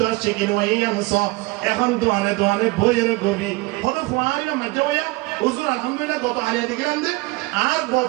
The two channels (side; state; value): left; quieter; 23.0 dB